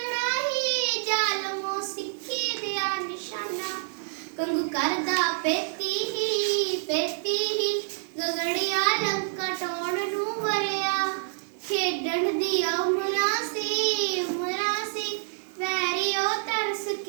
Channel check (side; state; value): left; silent; 60 dB below the other